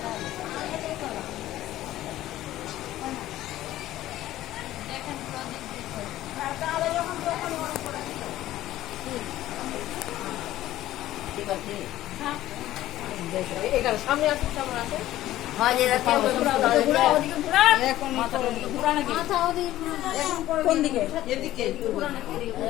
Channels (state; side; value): quieter; right; 14.5 dB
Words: ঠিক আছে হ্যাঁ এখানে সামনে আছে হ্যাঁ যে রাতে ঘোরা ওদিকে ঘোরা এখন মাথা ঘোরা নাকি মাথা ওদিকে ঘুরে এখন কোন দিকে এদিকে ঘোরা নাকি